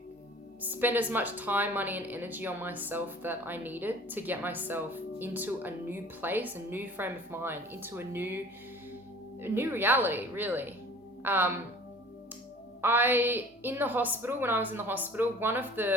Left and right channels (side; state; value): both; normal; correlation 0.47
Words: spend as much time, money, and energy on myself that I needed to get myself into a new place, a new frame of mind, into a new reality, really. In the hospital, when I was in the hospital, one of